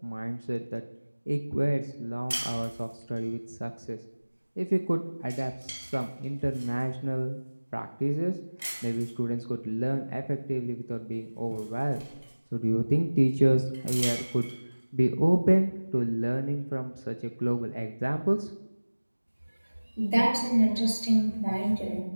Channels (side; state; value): both; inverted; correlation -1.00